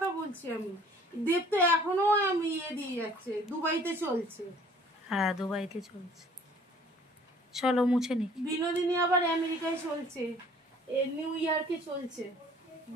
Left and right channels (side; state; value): both; normal; correlation 0.54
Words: বলছি আমি। দেব তো এখনো আমি দিয়ে যাচ্ছে, দুবাইতে চলছে। হ্যাঁ দুবাইতে চলছে, চলো মুছে নি। বিনোদিনী আবার আমেরিকায় চলছে, নিউ ইয়র্কে চলছে